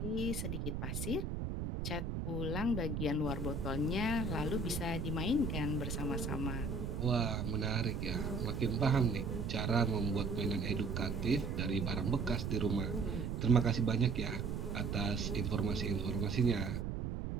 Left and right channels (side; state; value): right; noise; rumble, 2 dB below the sound